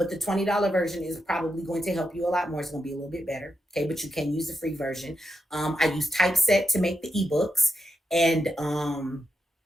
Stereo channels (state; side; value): normal; both; correlation 0.85